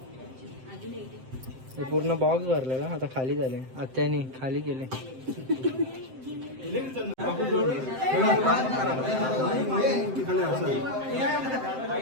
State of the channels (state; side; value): late; left; 7.7 ms